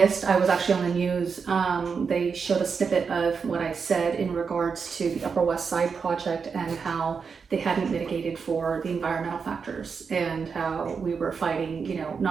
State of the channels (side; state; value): left; quieter; 5.7 dB